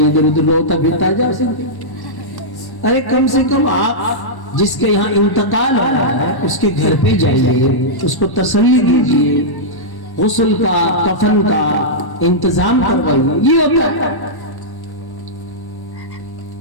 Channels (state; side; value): late; right; 1.1 ms